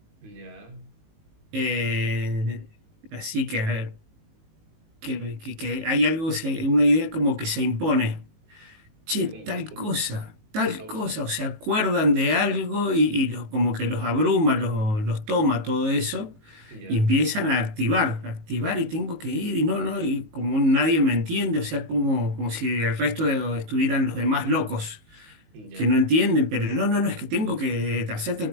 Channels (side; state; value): left; late; 19 ms